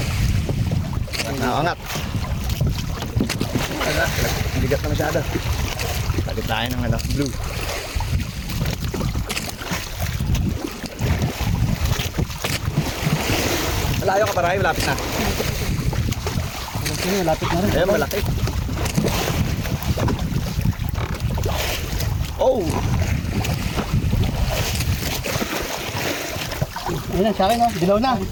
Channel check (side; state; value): both; identical; correlation 1.00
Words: Nakangat. Bigat na masyado. Palit tayo ng anak blue. Malayo ka para malapit na. Sino, lapit na rin. Ayun, malaki. Oh! Ayun na, sa akin oh. Dilaw na.